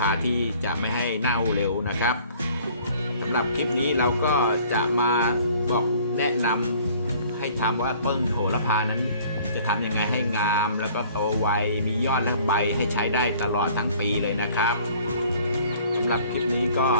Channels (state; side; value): inverted; both; correlation -0.54